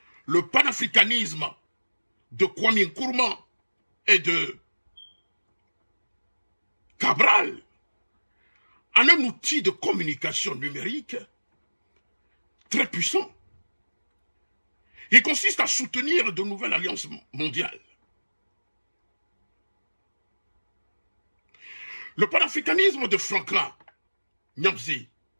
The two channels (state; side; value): inverted; both; correlation -1.00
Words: le panafricanisme de Kwame Nkrumah et de Cabral en un outil de communication numérique très puissant. Il consiste à soutenir de nouvelles alliances mondiales. Le panafricanisme de Franklin Nyamsi